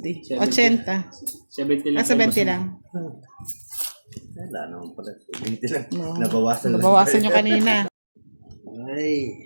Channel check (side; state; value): both; inverted; correlation -1.00